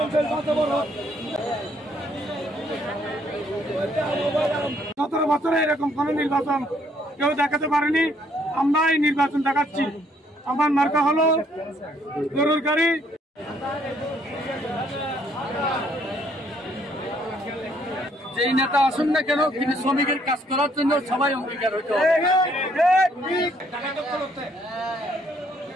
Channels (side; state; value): both; normal; correlation 0.67